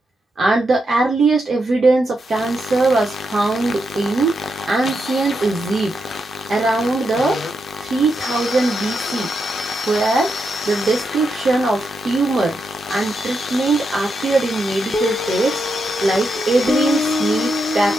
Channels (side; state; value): both; normal; correlation 0.84